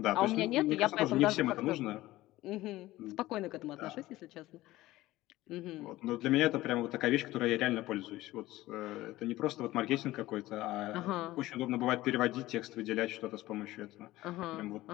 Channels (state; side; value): quieter; right; 17.0 dB